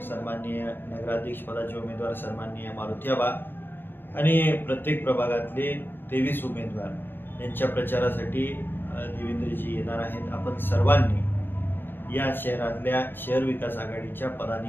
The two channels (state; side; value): late; right; 0.099 ms